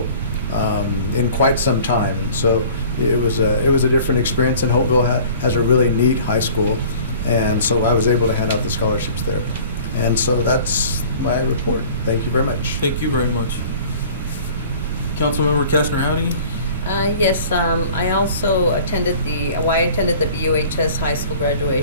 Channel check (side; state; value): both; inverted; correlation -0.47